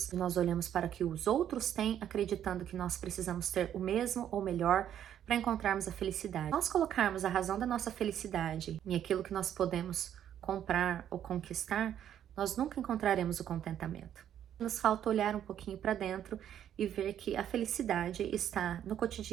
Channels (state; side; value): quieter; left; 10.2 dB